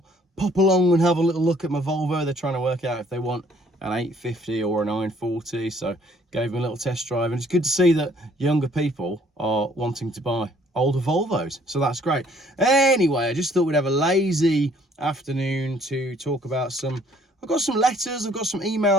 pop along and have a little look at my Volvo. They're trying to work out if they want an 850 or a 940, so gave them a little test drive, and it's good to see that younger people are wanting to buy older Volvos, so that's great. Anyway, I just thought we'd have a lazy afternoon to talk about I've got some letters, I've got some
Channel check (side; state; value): both; normal; correlation 0.61